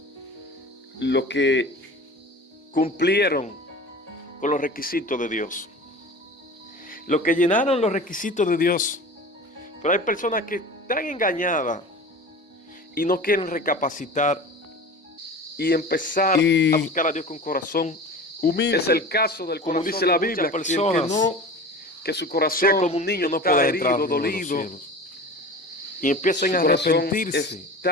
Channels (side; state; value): both; normal; correlation 0.35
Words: Los que cumplieron con los requisitos de Dios. Los que llenaron los requisitos de Dios. Pero hay personas que están engañadas y no quieren recapacitar y empezar a buscar a Dios con corazón humilde. Es el caso del corazón, como dice la Biblia, que su corazón como un niño no puede herido, dolido, y empiezan a arrepentirse,